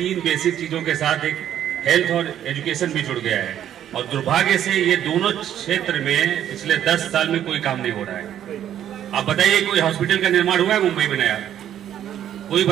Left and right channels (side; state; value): left; quieter; 10.7 dB